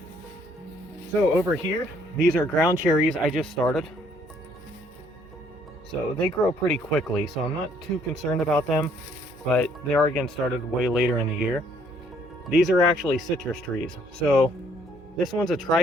So over here, these are ground cherries I just started. So they grow pretty quickly, so I'm not too concerned about them, but they are again started way later in the year. These are actually citrus trees. So this one's a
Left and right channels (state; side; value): normal; both; correlation 0.65